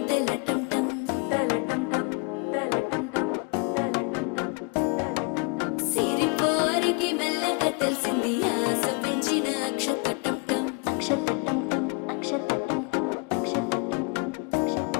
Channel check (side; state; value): right; quieter; 32.3 dB